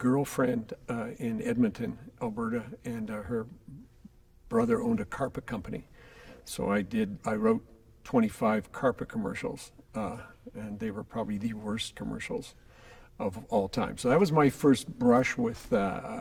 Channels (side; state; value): both; identical; correlation 1.00